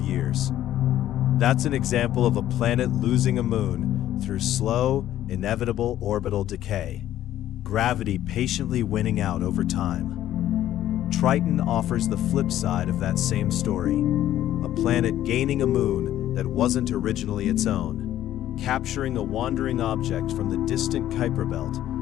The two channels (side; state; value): right; quieter; 12.6 dB